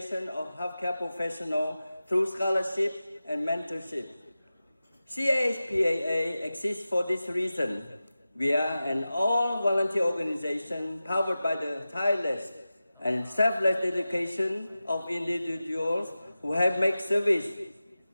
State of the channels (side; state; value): both; inverted; correlation -0.95